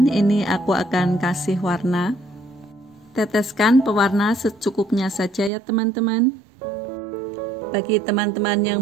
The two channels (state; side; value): drops out; left; at 5.5 s